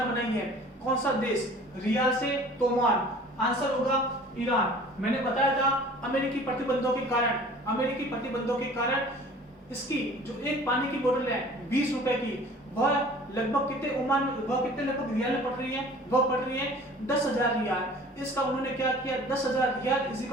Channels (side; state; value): both; normal; correlation 0.47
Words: बनाई है? कौन सा देश? रियाल से तोमान। आंसर होगा ईरान। मैंने बताया था अमेरिकी प्रतिबंधों के कारण इसकी जो एक पानी की बोतल है 20 रुपए की, वह लगभग कितने ओमान, वह कितने लगभग रियाल में पड़ रही है, वह पड़ रही है 10,000 रियाल। इसका उन्होंने क्या किया, 10,000 riyal is